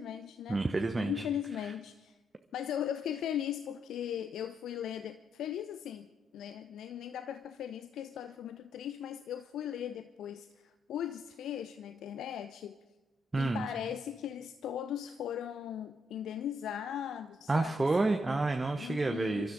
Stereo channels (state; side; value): normal; both; correlation 0.77